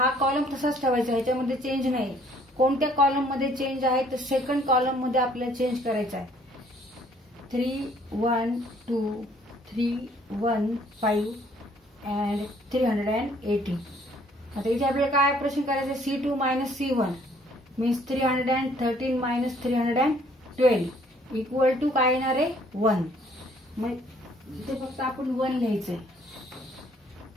कॉलम तसाच ठेवायचा, ह्याच्यामध्ये चेंज नाही. कोणत्या कॉलम मध्ये चेंज आहे, तर सेकंड कॉलम मध्ये आपल्याला चेंज करायचा आहे. 3 1 2 3 1 5 अँड 380. आता इथे आपल्याला काय ऑपरेशन करायचं, C2 minus C1 means 313 minus 312 equal to काय येणार आहे, 1. मग इथे फक्त आपण 1 लिहायचंय,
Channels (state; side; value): normal; both; correlation 0.61